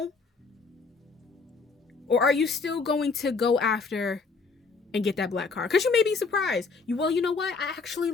Or are you still going to go after and get that black car? Because you may be surprised. You know what? I actually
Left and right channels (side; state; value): right; quieter; 4.5 dB